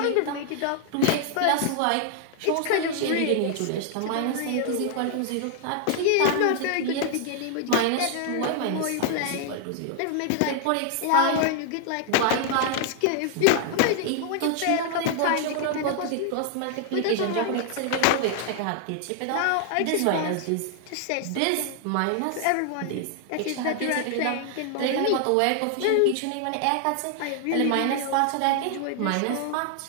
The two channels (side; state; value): both; different; correlation 0.00